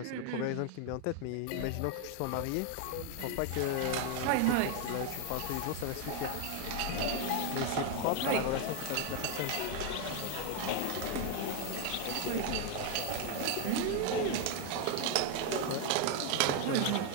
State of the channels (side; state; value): both; different; correlation 0.01